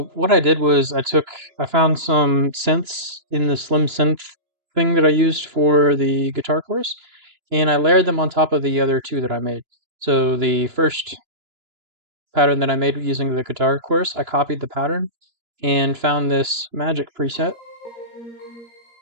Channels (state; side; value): late; left; 2.9 ms